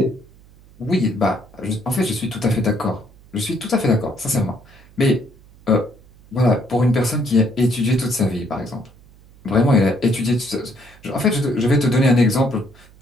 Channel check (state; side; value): noise; right; hum, 25 dB below the sound